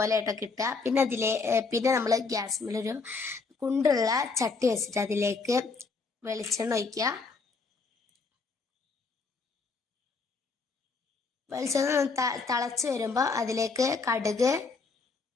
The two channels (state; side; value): quieter; right; 4.4 dB